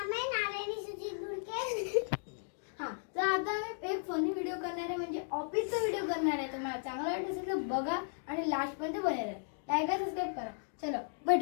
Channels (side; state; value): right; silent; digital silence